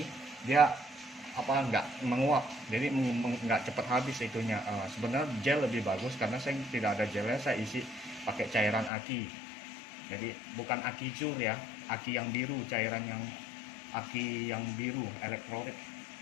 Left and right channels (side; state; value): right; drops out; at 8.9 s